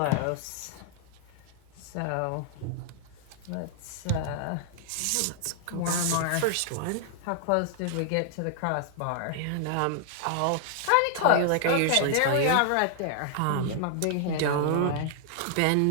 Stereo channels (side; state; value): both; different; correlation 0.00